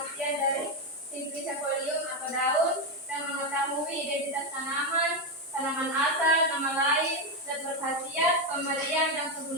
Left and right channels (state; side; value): normal; both; correlation 0.07